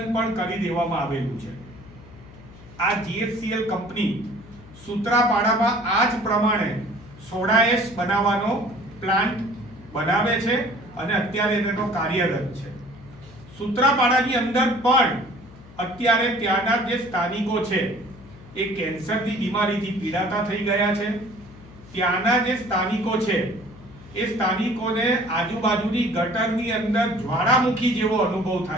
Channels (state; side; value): noise; left; hum, 20 dB below the sound